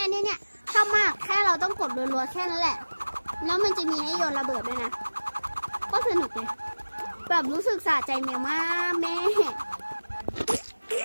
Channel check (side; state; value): both; inverted; correlation -1.00